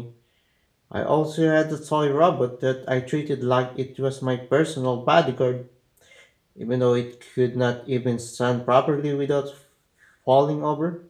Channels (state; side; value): identical; both; correlation 1.00